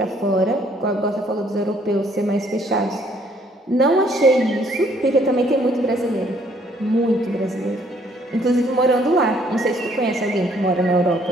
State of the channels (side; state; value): both; normal; correlation 0.64